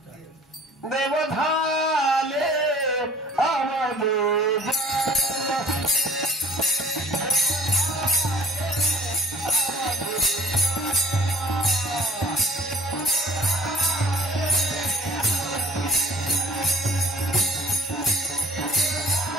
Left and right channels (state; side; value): normal; both; correlation 0.51